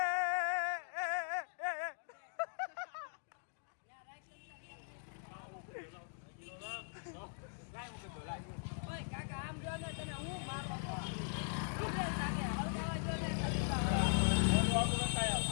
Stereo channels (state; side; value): silent; right; digital silence